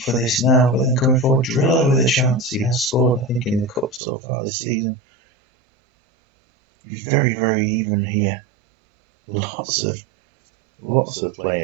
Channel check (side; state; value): left; drops out; at 4.0 s